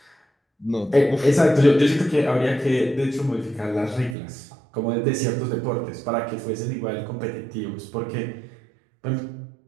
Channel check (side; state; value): left; drops out; at 4.2 s